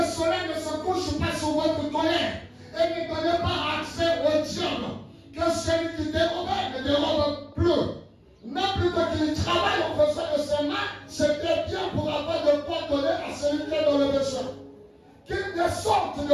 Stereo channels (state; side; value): identical; both; correlation 1.00